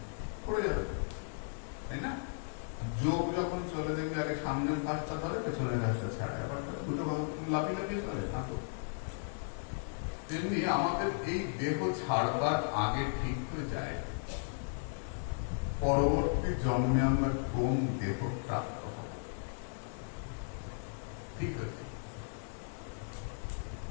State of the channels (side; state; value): right; silent; 54 dB below the other